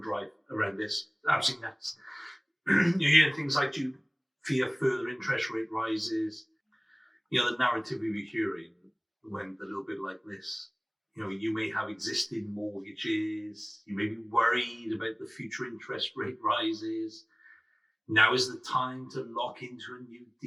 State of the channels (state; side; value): identical; both; correlation 1.00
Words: around this. Absolutely nuts. You hear things like, do you fear further interest rate rises? The narrative we were hearing went a little bit like this. You may have existing mortgages. You may be worried about the future interest rate rises. Now is the time to lock into a new